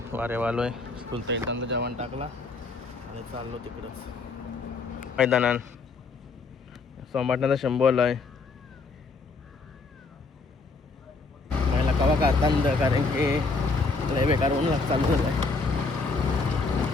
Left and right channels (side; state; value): right; quieter; 4.1 dB